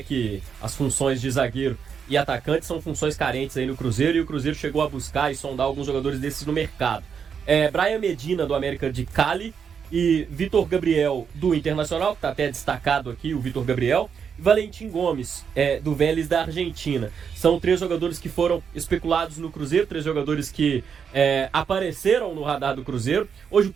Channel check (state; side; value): quieter; left; 6.9 dB